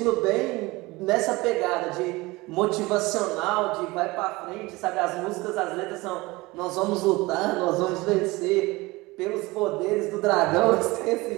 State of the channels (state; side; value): quieter; left; 22.0 dB